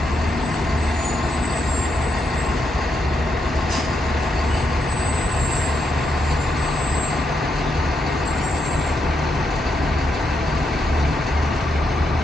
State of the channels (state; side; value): normal; both; correlation 0.80